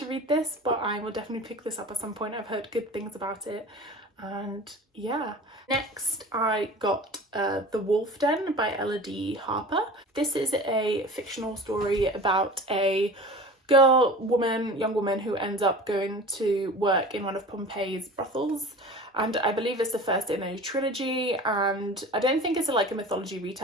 read this, but I will definitely pick this up at some point. I've heard good things about it, and yeah. Next, I got The Wolf Den by Ella D. Harper. This is a fictional story about a young woman who ends up going to work in one of Pompeii's brothels, and I believe it's the first in a trilogy, and I don't think it's like a mythology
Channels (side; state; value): both; normal; correlation 0.38